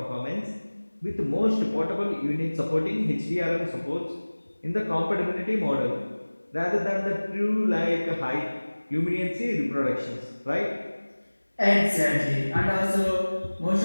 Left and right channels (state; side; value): inverted; both; correlation -1.00